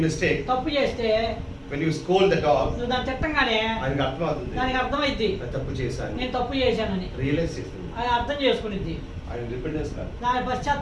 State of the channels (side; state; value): both; identical; correlation 1.00